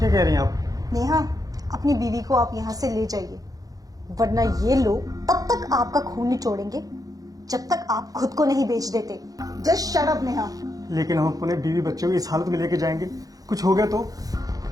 कह रही हैं आप? नेहा, अपनी बीवी को आप यहाँ से ले जाइए, वरना ये लोग तब तक आपका खून निचोड़ेंगे जब तक आप खुद को नहीं बेच देते। Just shut up Neha. लेकिन हम अपने बीवी बच्चों को इस हालत में लेके जाएंगे, कुछ हो गया तो?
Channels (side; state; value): left; late; 0.17 ms